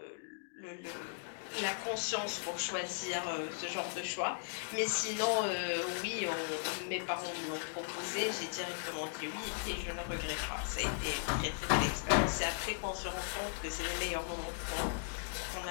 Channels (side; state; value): right; silent; digital silence